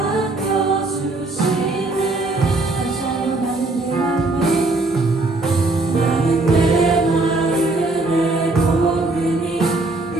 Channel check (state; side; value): quieter; left; 3.0 dB